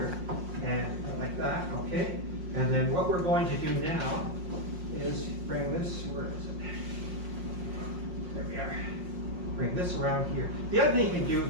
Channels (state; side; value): late; left; 5.6 ms